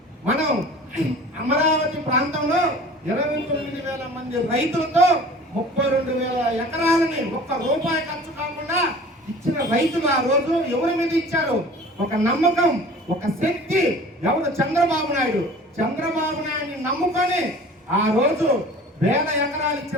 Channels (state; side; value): normal; both; correlation 0.44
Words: మనం అమరావతి ప్రాంతంలో 29,000 మంది రైతులతో 32,000 ఎకరాలని ఒక్క రూపాయి ఖర్చు కాకుండా ఇచ్చిన రైతులు ఆ రోజు ఎవరి మీద ఇచ్చారు? ఒక నమ్మకం, ఒక శక్తి. ఎవరు? చంద్రబాబు నాయుడు. చంద్రబాబు నాయుడిని నమ్ముకొని ఆ రోజు 1000 ఎకరాలు